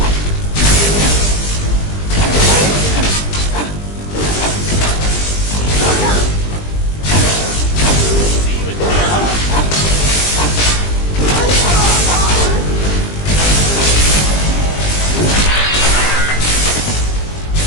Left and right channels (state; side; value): late; right; 20 ms